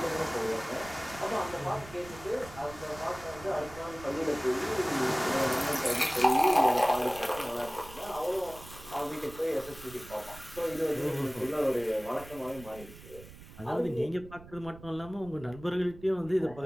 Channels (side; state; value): right; noise; rumble, 17 dB below the sound